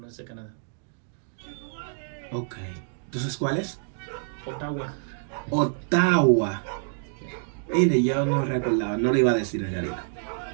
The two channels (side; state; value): left; silent; digital silence